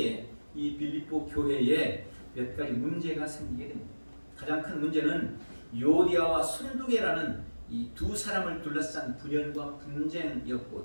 이 빌립보 교회에 몇 가지 문제가 생기게 됩니다. 가장 큰 문제는 요디아와 순두계라는 이 두 사람을 둘러싼 분열과 분쟁이었고,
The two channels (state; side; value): inverted; both; correlation -1.00